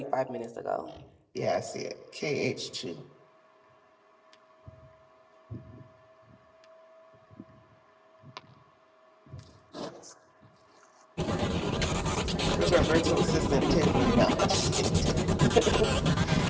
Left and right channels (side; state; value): both; identical; correlation 1.00